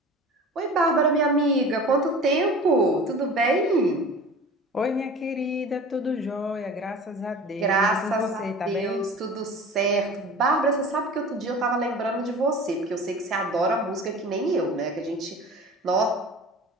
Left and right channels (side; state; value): both; normal; correlation 0.38